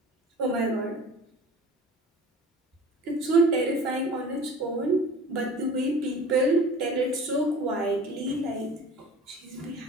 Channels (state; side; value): normal; both; correlation 0.42